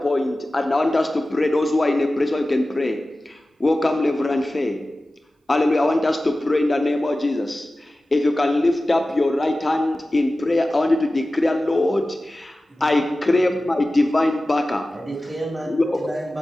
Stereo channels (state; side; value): normal; both; correlation 0.96